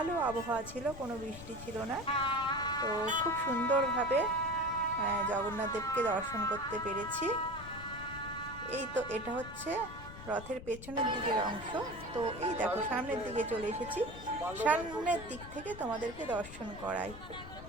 আবহাওয়া ছিল, কোনো বৃষ্টি ছিল না। তো খুব সুন্দরভাবে জগন্নাথ দেবকে দর্শন করতে পেরেছি। এই তো এটা হচ্ছে রথের পেছনের দিকের অংশ। তো এই দেখো সামনের দিকে চলে এসেছি, সামনের দিক থেকে তোমাদেরকে দর্শন করাই।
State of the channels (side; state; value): left; noise; rumble, 13 dB below the sound